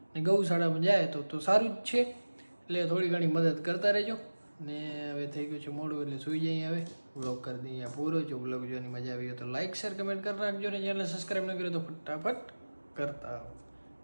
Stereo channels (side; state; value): both; inverted; correlation -1.00